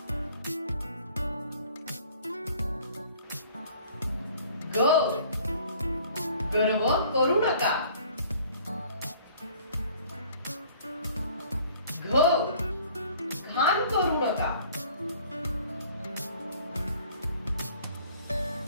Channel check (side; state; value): both; inverted; correlation -0.53